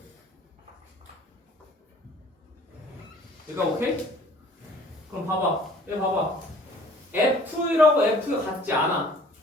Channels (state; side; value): normal; both; correlation 0.52